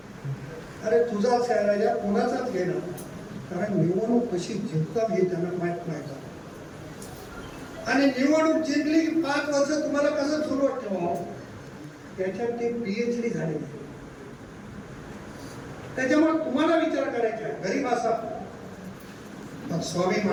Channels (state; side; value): identical; both; correlation 1.00